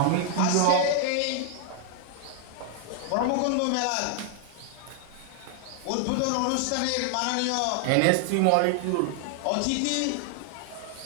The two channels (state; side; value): different; both; correlation 0.00